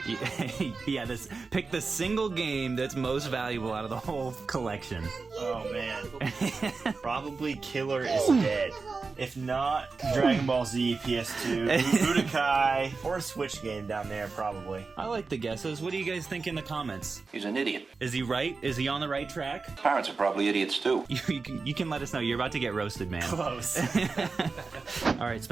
Yeah, pick the single game that's most valuable out of the whole collection. Oh, man. Probably Killer is Dead. If not, Dragon Ball Z, PS2, Budokai, or a Switch game down there, probably. I like the guesses. What do you guys think in the comments? He's an idiot. Is he right? Is he on the right track? Parents are probably idiots, too. You can let us know. You're about to get roasted, man. Close. All right,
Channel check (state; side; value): quieter; left; 4.3 dB